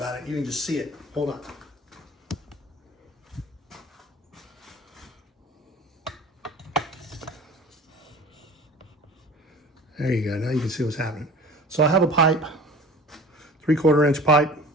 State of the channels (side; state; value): both; normal; correlation 0.41